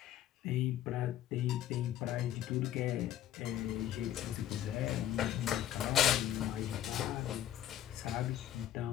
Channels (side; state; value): right; quieter; 11.8 dB